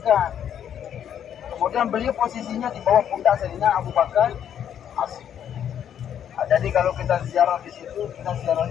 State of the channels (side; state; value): right; quieter; 9.4 dB